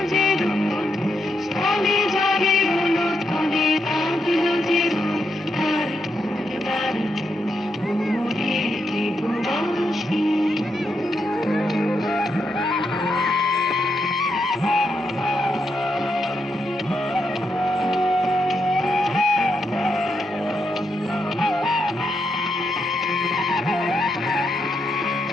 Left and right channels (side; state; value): both; normal; correlation 0.82